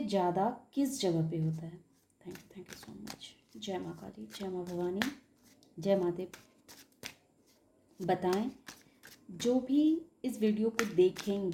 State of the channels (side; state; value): both; identical; correlation 1.00